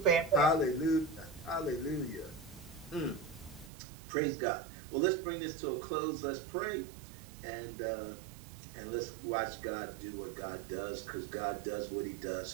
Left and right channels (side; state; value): left; drops out; at 3.7 s